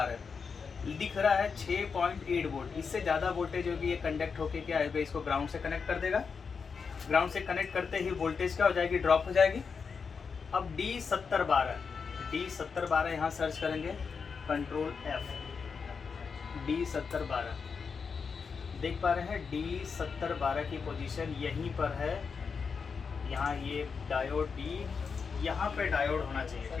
दिख रहा है 6.8 वोल्ट। इससे ज़्यादा वोल्टेज होगी, ये कंडक्ट होके क्या है, इसको ग्राउंड से कनेक्ट कर देगा। ग्राउंड से कनेक्ट करते ही वोल्टेज क्या हो जाएगी? ड्रॉप हो जाएगी। अब D7012 यहाँ सर्च करेंगे, कंट्रोल F, D7012 देख पा रहे हैं। D7012 की पोजीशन यहीं पर है, यहाँ ये डायोड D, यहाँ पे डायोड होना चाहिए,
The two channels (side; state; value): right; quieter; 5.6 dB